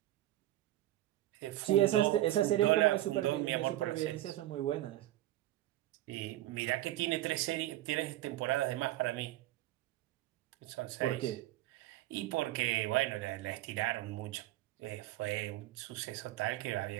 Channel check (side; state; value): left; quieter; 15.1 dB